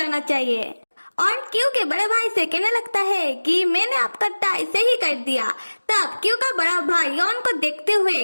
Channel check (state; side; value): inverted; both; correlation -1.00